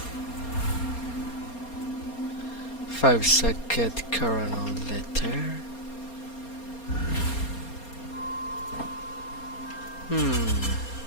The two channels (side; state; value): right; late; 4.3 ms